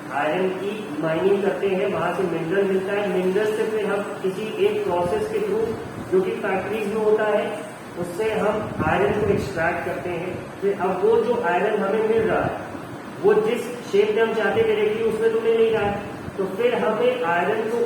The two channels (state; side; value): identical; both; correlation 1.00